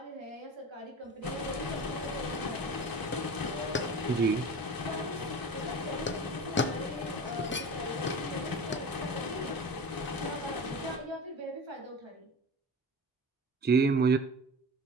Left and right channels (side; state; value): both; normal; correlation 0.34